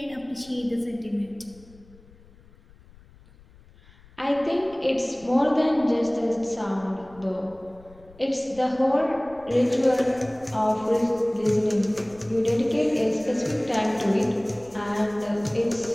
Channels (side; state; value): left; noise; rumble, 25 dB below the sound